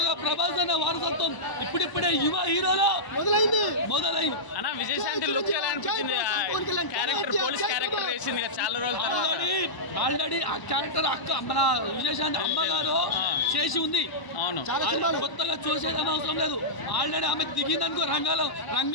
ప్రభాస్ అన్న వారసత్వం ఇప్పుడిప్పుడే యువ హీరోలో మొదలైంది. అన్న విజయశాంతి లుక్ ఎలా అనిపించింది? క్యారెక్టర్ పోలీస్ క్యారెక్టర్ వేసింది చాలా రోజులు ఆల్రెడీ ఆ క్యారెక్టర్ అక్క మన విజయశాంతి అమ్మగారు చేసి ఉంది. అవును, కొత్తగా చూసేదని అవసరం లేదు. ఆల్రెడీ ఆమె దిగిందనుకో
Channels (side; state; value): right; late; 1.0 ms